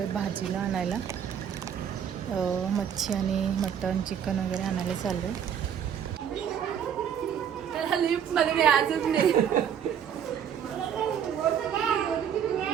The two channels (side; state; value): left; quieter; 8.6 dB